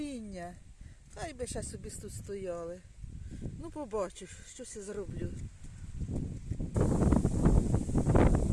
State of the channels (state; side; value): identical; both; correlation 1.00